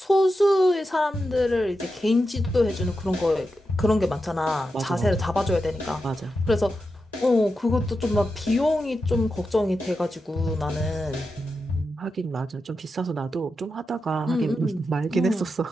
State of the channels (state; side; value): normal; both; correlation 0.89